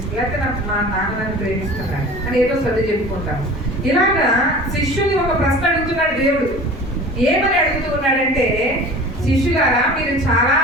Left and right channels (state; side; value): normal; both; correlation 0.40